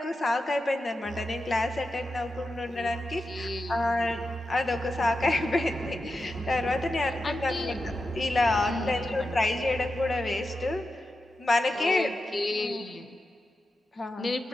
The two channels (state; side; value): normal; both; correlation 0.90